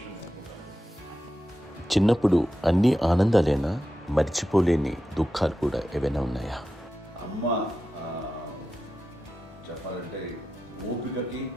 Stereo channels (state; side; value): normal; both; correlation 0.91